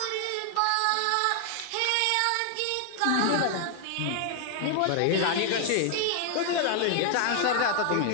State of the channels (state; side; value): different; both; correlation 0.00